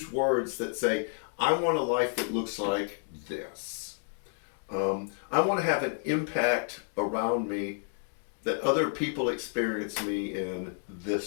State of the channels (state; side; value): silent; right; 57 dB below the other